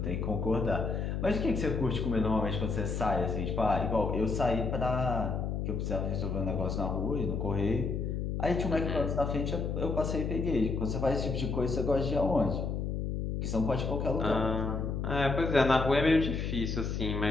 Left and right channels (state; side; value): noise; left; hum, 2 dB below the sound